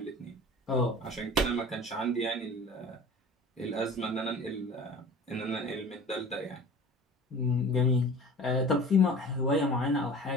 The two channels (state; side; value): normal; both; correlation 0.41